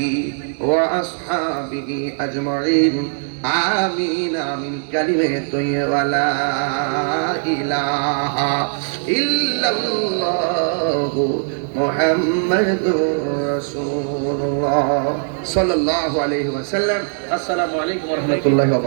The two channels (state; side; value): silent; left; 66 dB below the other